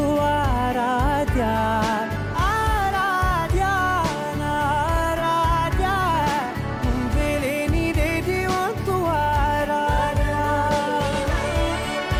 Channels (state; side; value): identical; both; correlation 1.00